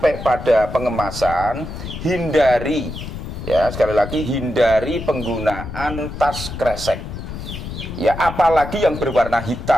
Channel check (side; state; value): left; noise; rumble, 9 dB below the sound